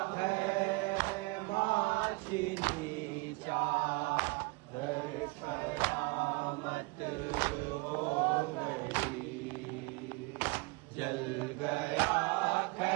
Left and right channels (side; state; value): left; quieter; 26.3 dB